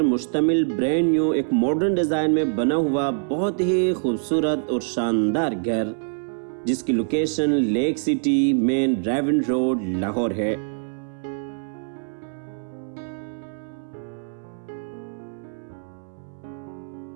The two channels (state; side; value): silent; left; 62 dB below the other